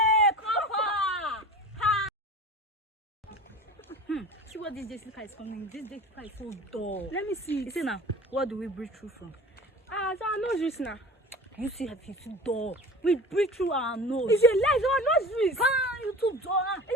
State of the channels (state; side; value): normal; both; correlation 0.37